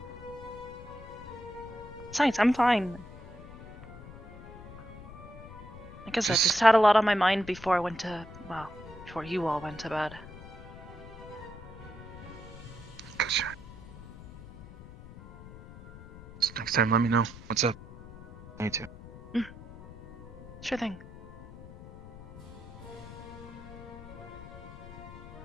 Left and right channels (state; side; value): noise; left; rumble, 15 dB below the sound